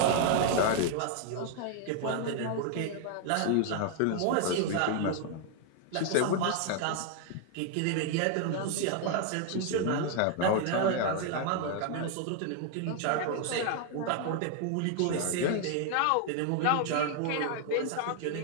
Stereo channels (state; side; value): different; both; correlation 0.00